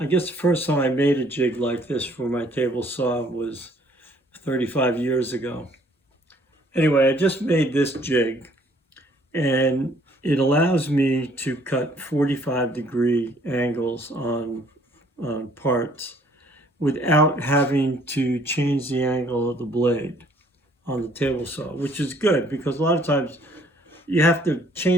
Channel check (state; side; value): normal; both; correlation 0.61